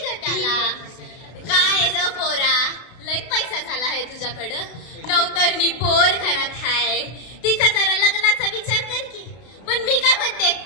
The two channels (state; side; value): late; right; 32 ms